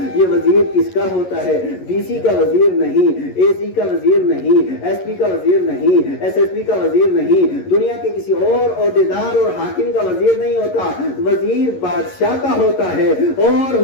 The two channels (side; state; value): right; late; 11 ms